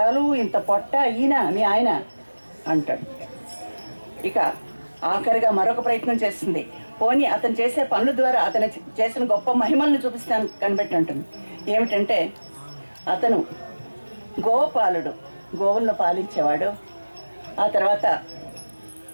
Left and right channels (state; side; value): inverted; both; correlation -1.00